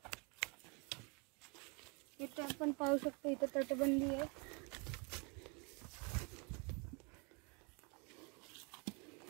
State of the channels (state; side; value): quieter; left; 32.6 dB